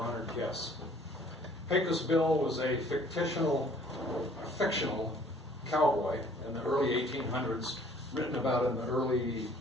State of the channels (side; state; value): both; normal; correlation 0.56